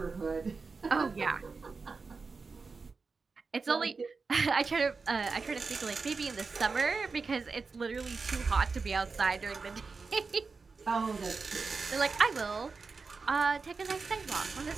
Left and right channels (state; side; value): quieter; left; 4.5 dB